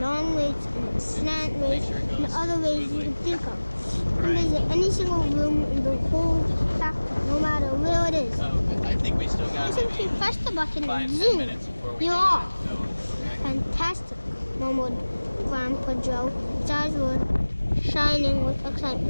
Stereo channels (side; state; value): both; inverted; correlation -1.00